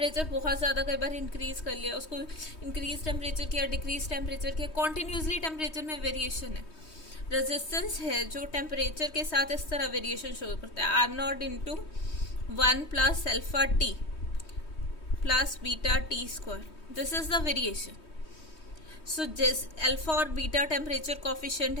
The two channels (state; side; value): late; right; 3.2 ms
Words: बहुत ज़्यादा, कई बार इंक्रीज़ कर लिया, उसको इंक्रीज टेम्परेचर किया, डिक्रीज टेम्परेचर किया, कॉन्टीन्यूसली टेम्परेचर में वेरिएशन है। रेजिस्टेंस है जो टेम्परेचर के साथ इस तरह वेरिएशन शो करता है, R0 into 1 plus alpha t plus beta t square, this is the variation. So जिस अल्फा और बीटा टेम्परेचर कॉफिशिएंट